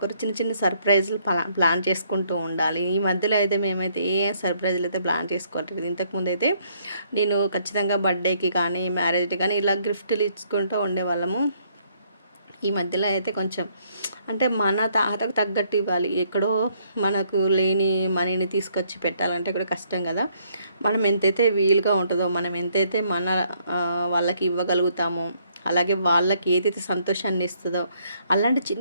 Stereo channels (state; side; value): inverted; both; correlation -0.69